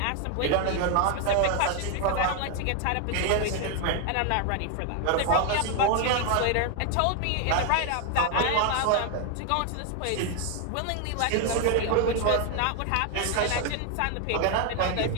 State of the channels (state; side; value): different; both; correlation 0.01